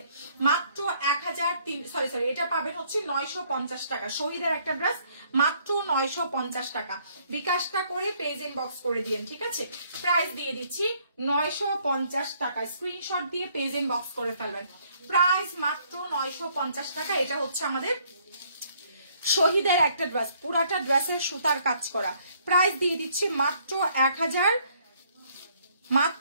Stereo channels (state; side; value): inverted; both; correlation -0.65